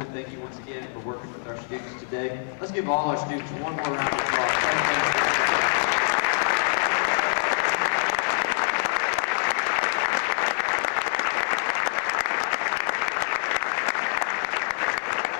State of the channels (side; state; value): right; silent; digital silence